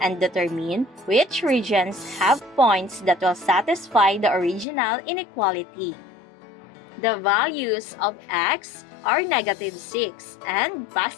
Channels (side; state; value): right; drops out; at 4.7 s